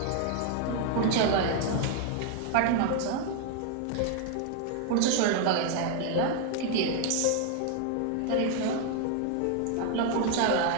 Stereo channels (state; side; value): different; both; correlation 0.00